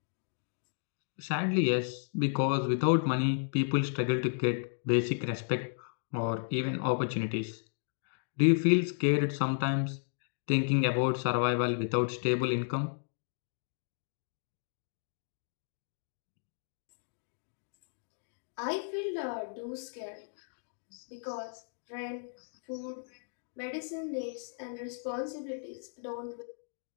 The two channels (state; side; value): silent; right; digital silence